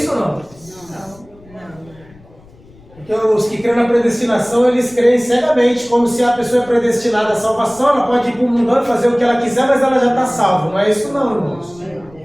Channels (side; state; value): left; noise; rumble, 25 dB below the sound